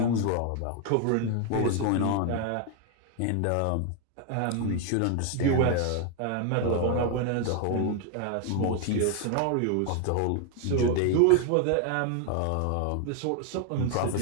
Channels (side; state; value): both; different; correlation 0.01